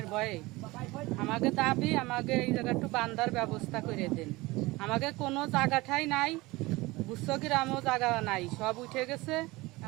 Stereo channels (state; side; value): quieter; left; 21.3 dB